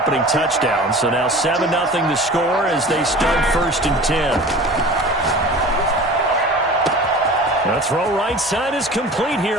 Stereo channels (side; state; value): both; normal; correlation 0.40